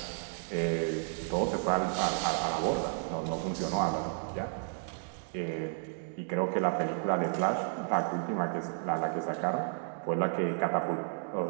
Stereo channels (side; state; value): left; silent; 56 dB below the other